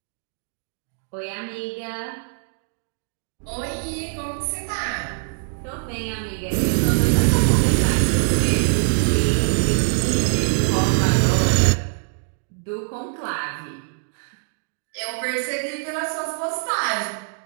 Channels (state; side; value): silent; left; digital silence